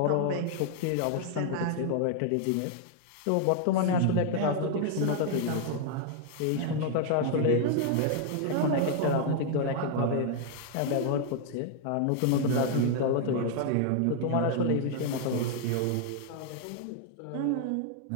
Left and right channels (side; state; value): both; different; correlation 0.00